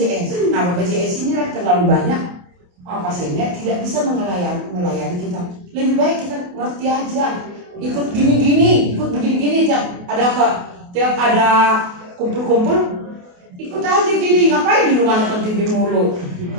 Nah BPJS ini terlalu banyak pasiennya, tidak bisa melayani kita. Lebih baik kita ngerti aja, ikut gini-gini, ikut begini-gini. Tiap ada kumpul-kumpul, ikut aja gini. Ngapain di rumah nonton TV mulu?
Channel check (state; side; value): late; left; 28 ms